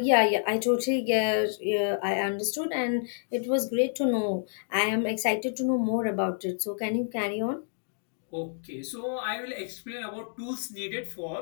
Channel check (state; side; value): silent; right; digital silence